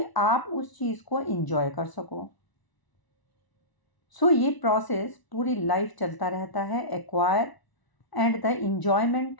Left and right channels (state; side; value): late; right; 1.0 ms